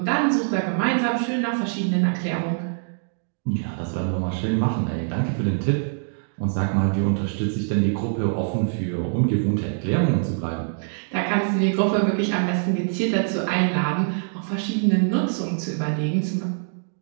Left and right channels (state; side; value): silent; left; digital silence